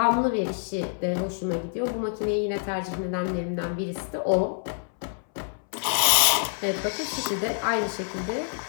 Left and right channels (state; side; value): silent; right; 61 dB below the other